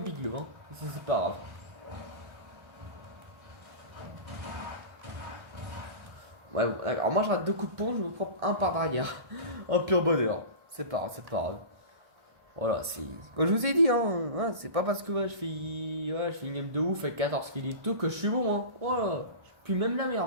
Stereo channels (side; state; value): left; late; 1.6 ms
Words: le hein. C'est pas grave. Ouais, bon, alors moi je rate 2 coups de pont, je me prends un par derrière. Un pur bonheur. C'est pas grave, c'est pas grave. Voilà, c'est. Comme je vous ai dit, hein, ouais, c'est pas parce que ouais, je fais une game de ouf avec 14 kills et tout que je suis bon, hein. Voilà, je pue même la